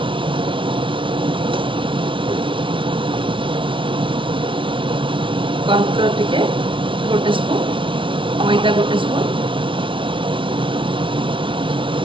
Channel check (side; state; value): left; late; 0.25 ms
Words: कॉर्नफ्लोर टिके गोटे स्पून मैदा गोटे स्पून